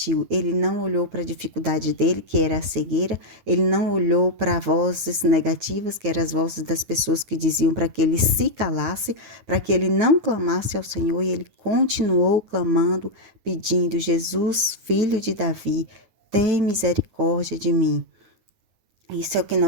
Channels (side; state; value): left; late; 9.5 ms